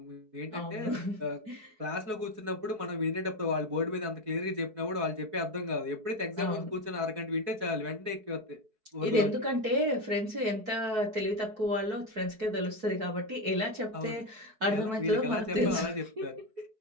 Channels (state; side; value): late; left; 4.7 ms